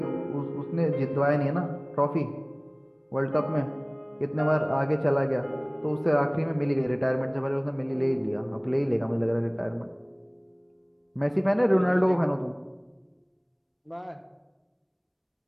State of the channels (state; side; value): identical; both; correlation 1.00